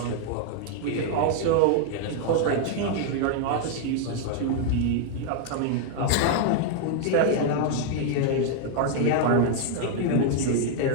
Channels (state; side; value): different; both; correlation 0.00